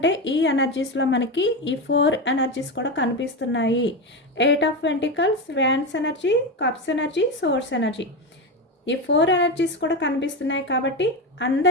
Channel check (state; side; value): normal; both; correlation 0.16